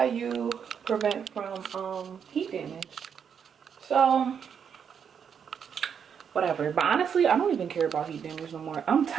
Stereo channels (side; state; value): left; quieter; 7.4 dB